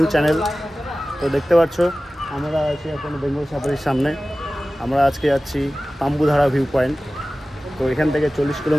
channel. তো দেখতে পাচ্ছ আমরা আছি এখন বেঙ্গল সাফারির সামনে। আমরা আজকে যাচ্ছি তাম্বুধারা ভিউ পয়েন্ট। তো এখান থেকে 40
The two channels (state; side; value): normal; both; correlation 0.96